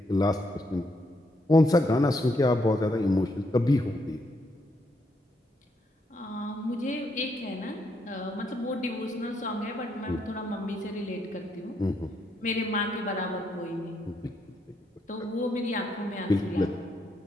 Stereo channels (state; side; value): normal; both; correlation 0.76